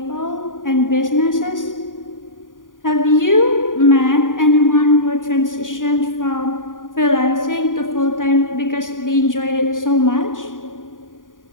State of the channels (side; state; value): right; late; 0.89 ms